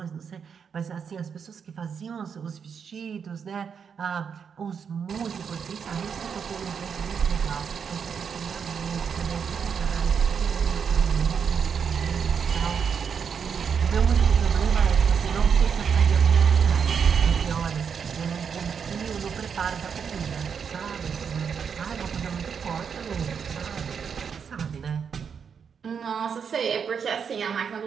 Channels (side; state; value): left; quieter; 6.7 dB